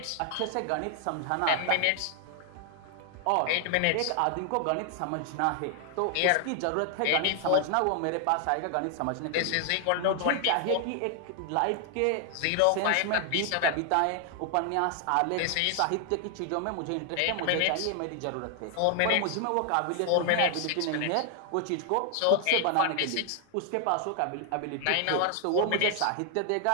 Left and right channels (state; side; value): different; both; correlation 0.00